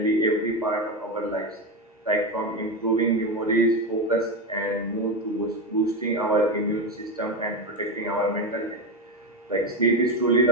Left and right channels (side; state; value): both; normal; correlation 0.15